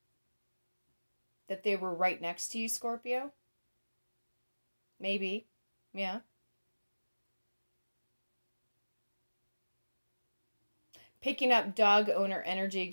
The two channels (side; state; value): both; inverted; correlation -1.00